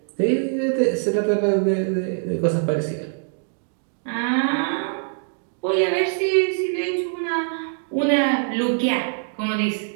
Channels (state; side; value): silent; left; digital silence